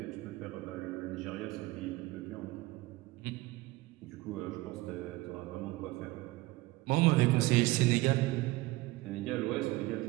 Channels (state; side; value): quieter; left; 20.1 dB